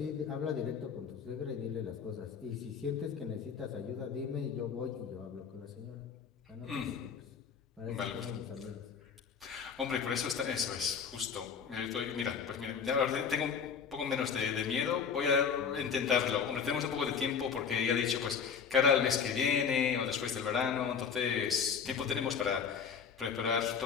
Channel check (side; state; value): right; quieter; 6.6 dB